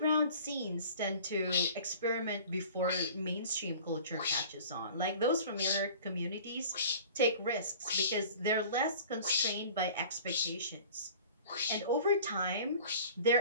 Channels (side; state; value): both; inverted; correlation -0.44